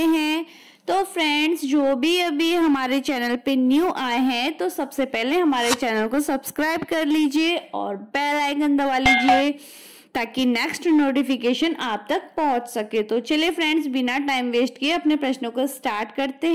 हैं। तो फ्रेंड्स, जो भी अभी हमारे चैनल पे न्यू आए हैं तो सबसे पहले हमारे चैनल को सब्सक्राइब कर लीजिए और बेल आइकन दबा लीजिए ताकि नेक्स्ट नोटिफिकेशन आप तक पहुंच सके। तो चलिए फ्रेंड्स, बिना टाइम वेस्ट किए अपने प्रश्नों को स्टार्ट करते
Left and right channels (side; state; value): both; identical; correlation 1.00